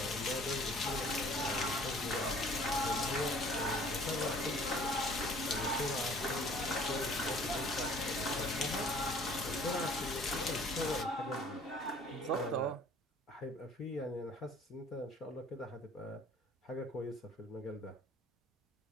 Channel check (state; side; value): normal; both; correlation 0.53